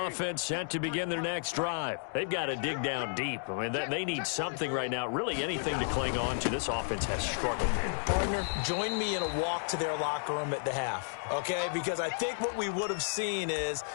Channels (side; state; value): right; silent; digital silence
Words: set to begin their next drive. They've got to dig down deep. I mean, they need something right now, really anything to cling on to. This offense has struggled. Partner, join me in a walk to their locker room at the half, okay? Because I think what we would have seen is